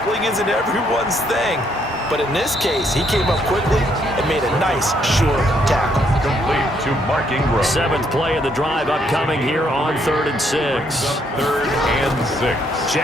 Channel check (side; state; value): both; normal; correlation 0.71